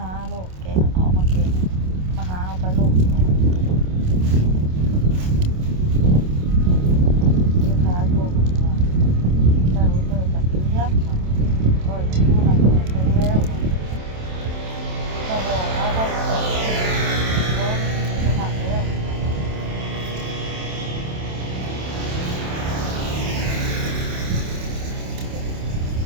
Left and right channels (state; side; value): late; left; 27 ms